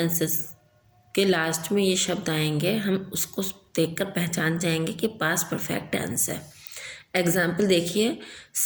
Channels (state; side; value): identical; both; correlation 1.00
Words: के लास्ट में ये शब्द आएंगे हम उसको देखकर पहचान जाएंगे कि पास्ट परफेक्ट टेंस है। एग्जाम्पल देखिए,